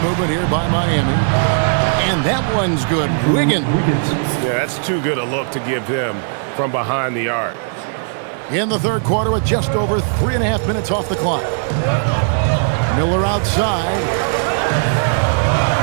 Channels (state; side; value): silent; left; digital silence